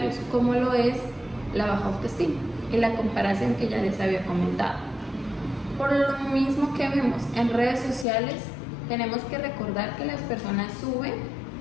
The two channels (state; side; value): drops out; right; at 8.1 s